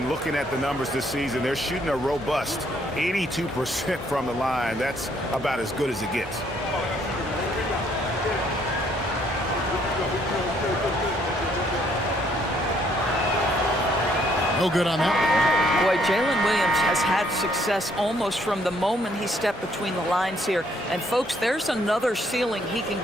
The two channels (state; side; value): normal; both; correlation 0.67